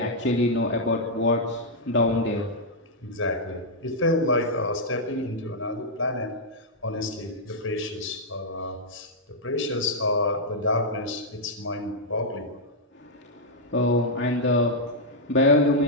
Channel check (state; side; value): normal; both; correlation -0.05